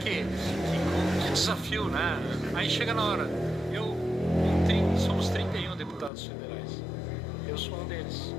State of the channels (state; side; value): drops out; right; at 6.1 s